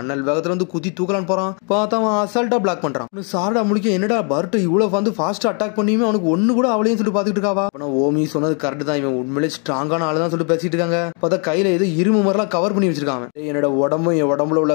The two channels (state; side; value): quieter; right; 38.4 dB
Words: வேகத்துல வந்து குத்தி தூக்கலான்னு போறான். பார்த்தா அவன் அசால்ட்டா பிளாக் பண்றான். சாரடா முடிக்க என்னடா பர்ட்ட இவ்வளவு வந்து ஃபாஸ்டா அட்டாக் பண்ணியுமே அவனுக்கு ஒண்ணு கூட அவளையும் சொல்லிட்டு பாத்துக்கிட்டு இருக்காவா. ஓமி சொன்னது கரெக்ட் தான், இவன் உண்மையிலே ஸ்ட்ராங்கான ஆளுதான் சொல்லிட்டு பேசிட்டு இருக்காங்க. பார்த்தா கையில ஏதோ இரும்பு மாதிரிலாம் கவர் பண்ணி வச்சிருக்காங்க. என்னோட உடம்பும் என் உடம்புல உள்ள